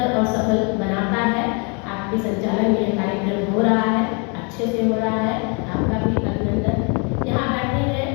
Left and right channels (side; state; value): right; quieter; 34.3 dB